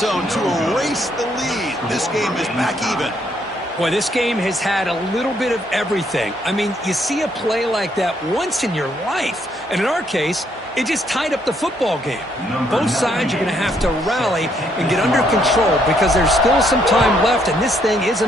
to erase the lead. This game is back even. Boy, this game has had a little bit of everything. I mean, you see a play like that once in your life. And in our case, it just tied up the football game. Both sides are going to have to rally and get under control because there's still some time left, and this thing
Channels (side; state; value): both; normal; correlation 0.71